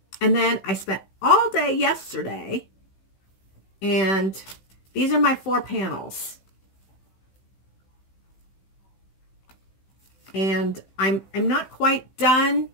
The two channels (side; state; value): right; late; 15 ms